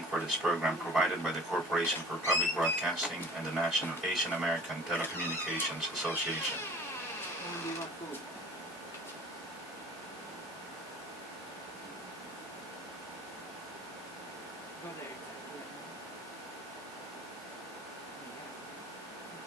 for this program provided by the Corporation for Public Broadcasting and the National Asian American Telecommunications Association.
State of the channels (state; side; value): normal; both; correlation 0.46